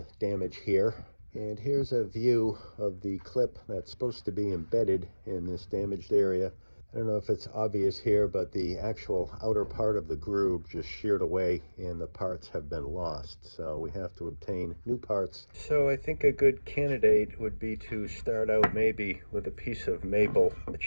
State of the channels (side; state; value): both; inverted; correlation -1.00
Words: damage here. And here's a view of the clip that's supposed to be embedded in this damaged area. I don't know if it's obvious here, but the actual outer part of the groove just sheared away and the parts have been lost. So we have to obtain new parts. So I think a good candidate would be to start out maybe with a piece of maple. The